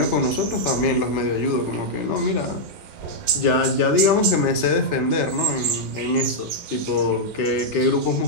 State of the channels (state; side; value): late; left; 3.4 ms